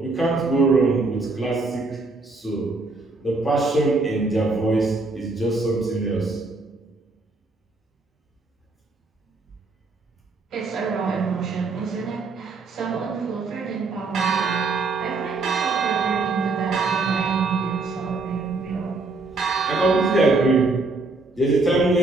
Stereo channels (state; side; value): quieter; left; 3.6 dB